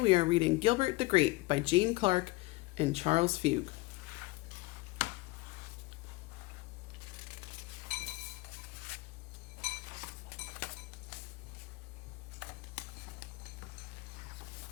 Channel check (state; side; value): quieter; right; 22.4 dB